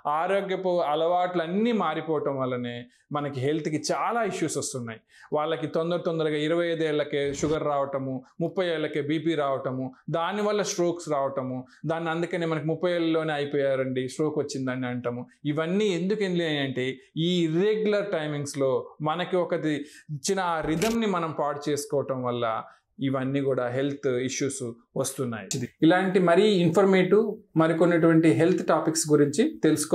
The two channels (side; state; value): both; identical; correlation 1.00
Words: ఆరోగ్యపు అలవాట్లు అన్నీ మారిపోవటం వల్లనే మనకి హెల్త్కి చాలా ఇష్యూస్ వస్తున్నాయి. వాళ్ళకి తొందరగా 25 ఏళ్ళకే షుగర్ రావటము, 30 ఏళ్ళకే బీపీ రావటము, దానివల్ల స్ట్రోక్స్ రావటము, దాన్ని అందుకనే మనకి 30 ఏళ్ళలోనే అయిపోయారండి, స్ట్రోక్ వచ్చిందని అంటాము. ఇవన్నీ ఎందుకు అంటే ఈ ఇర్రెగ్యులర్ టైమింగ్స్లో మనకి ఒకటి ఇచ్చిన ఆ రిథమ్ని మనం పాడు చేసుకోవటం వల్ల ఇవన్నీ కూడా హెల్త్ ఇష్యూస్ వస్తున్నాయి. ఇలాంటి మరీ ఇన్ఫర్మేటివ్ మరికొన్నటువంటి హెల్త్ టాపిక్స్ గురించి